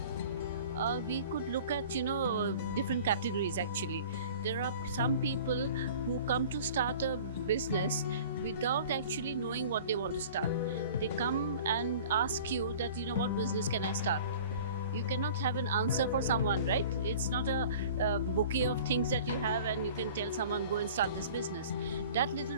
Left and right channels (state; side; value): inverted; both; correlation -0.44